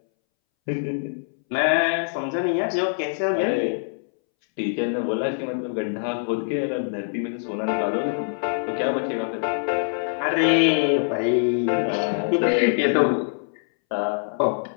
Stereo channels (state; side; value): silent; right; 63 dB below the other